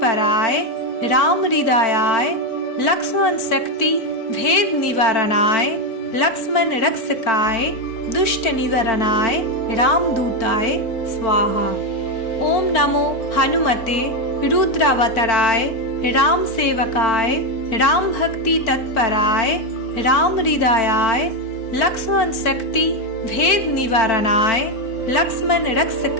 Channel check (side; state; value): right; late; 4.4 ms